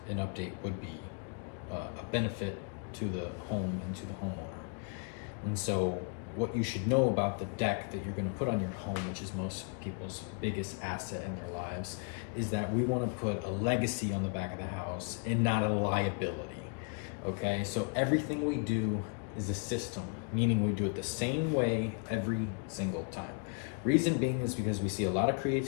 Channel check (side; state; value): right; quieter; 39.4 dB